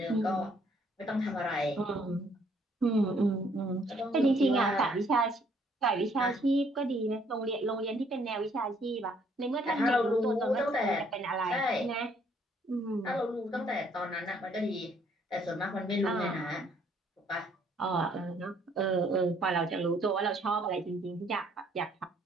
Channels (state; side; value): normal; both; correlation 0.65